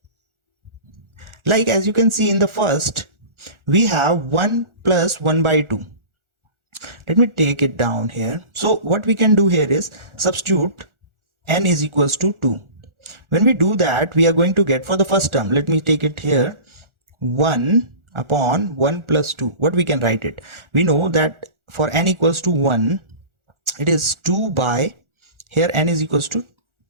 Like as you can see in the first, we have 1 plus 1 by 2. Let me take it down here. So what we can do here is substitute n is equals to 2. When we do that, we are going to get for the first term, let me take it here, 1 upon 1 plus 2. What we can write it? We know that for n equals to 1, it is 2 by, here n is equals to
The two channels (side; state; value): left; late; 1.4 ms